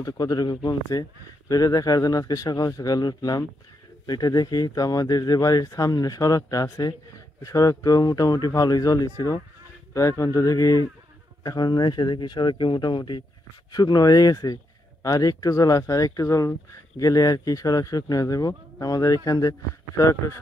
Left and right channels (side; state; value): both; normal; correlation 0.81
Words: কতটুকু কমছে। তো এটা দেখার জন্য আজকে সকাল সকাল উঠলাম। এটা দেখি তো আমাদের যে বাড়ির সামনে সড়কটা আছে, সড়ক তো মোটামুটি ভালোই জলই ছিল। তো এখন তো দেখি, এখন এসে দেখি সড়কে মোটামুটি শুকনো হয়ে গেছে। আর একটু জল আছে, আর একটু জল গেলে আর কি সড়ক শুকনো হয়ে যাবো। আমাদের এখান দিয়ে সড়কটা